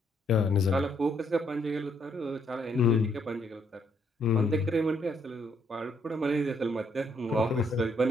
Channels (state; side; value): normal; both; correlation 0.71